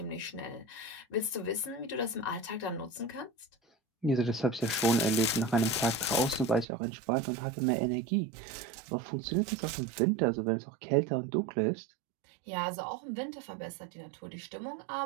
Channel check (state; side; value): drops out; left; at 6.7 s